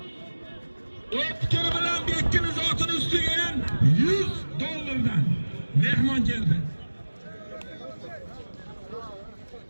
O'tkir bilan Bekkin zotining ustiga ham $100 mehmon keldi.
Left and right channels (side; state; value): both; inverted; correlation -1.00